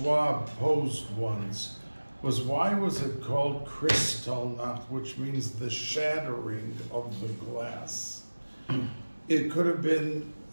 posed once was, why was it called Kristallnacht, which means the shattering of the glass? It could have been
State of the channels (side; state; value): both; inverted; correlation -1.00